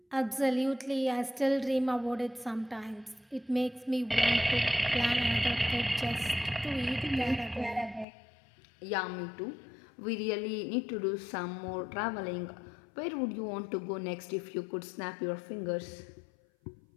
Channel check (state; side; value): drops out; right; at 8.1 s